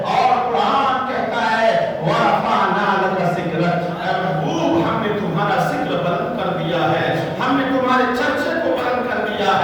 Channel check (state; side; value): identical; both; correlation 1.00